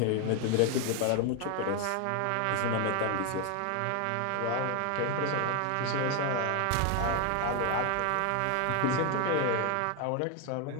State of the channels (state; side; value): different; both; correlation 0.00